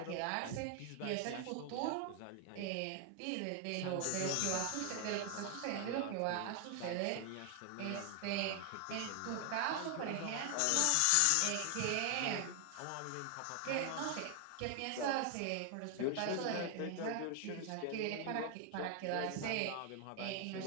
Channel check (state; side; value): different; both; correlation 0.00